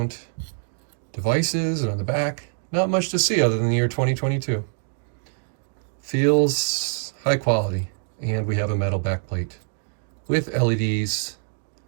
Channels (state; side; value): silent; left; 62 dB below the other